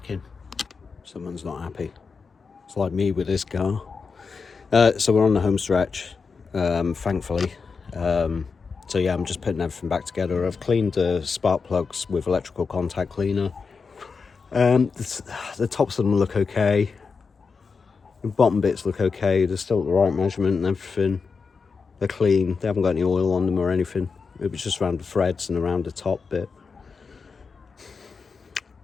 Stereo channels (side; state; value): right; quieter; 5.1 dB